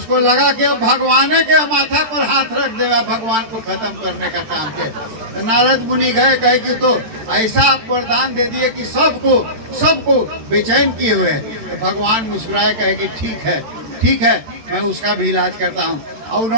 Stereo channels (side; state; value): left; late; 13 ms